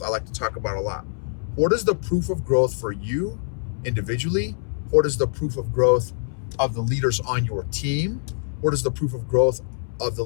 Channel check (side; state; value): right; silent; 61 dB below the other